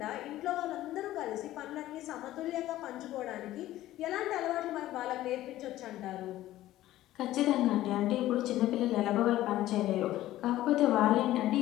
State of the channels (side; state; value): right; quieter; 14.8 dB